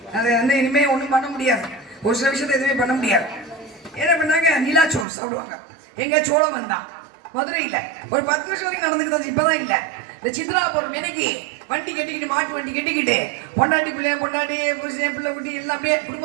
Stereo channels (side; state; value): left; drops out; at 5.1 s